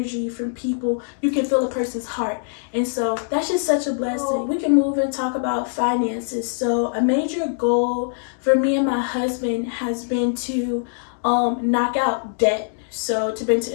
from people. You can feel a person's heart. And so that's just such a blessing. We can move and talk about finances. So a major goal for me and my husband has been to knock out debt. So to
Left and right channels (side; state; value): right; silent; digital silence